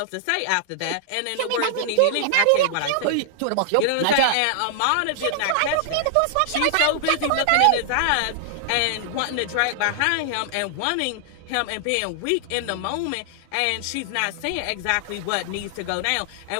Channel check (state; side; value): different; both; correlation -0.01